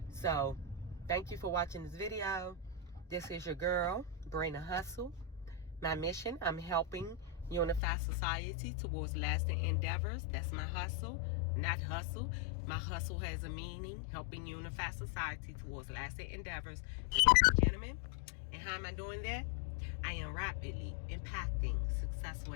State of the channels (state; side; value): drops out; right; at 7.8 s